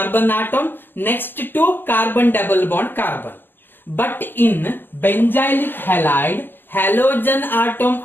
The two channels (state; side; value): late; right; 0.092 ms